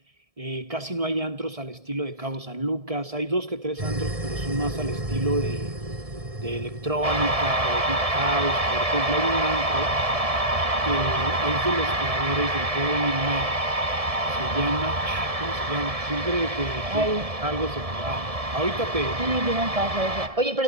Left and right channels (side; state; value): left; late; 1.7 ms